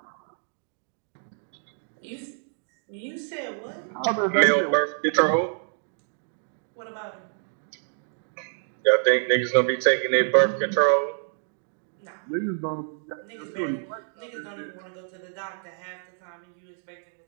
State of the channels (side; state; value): left; silent; digital silence